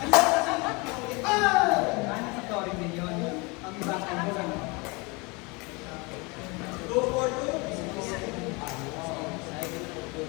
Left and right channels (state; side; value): quieter; right; 27.8 dB